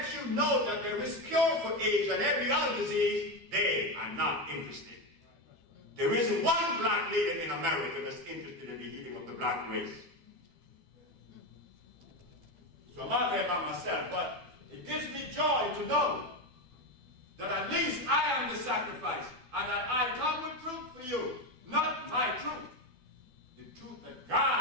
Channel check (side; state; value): left; late; 12 ms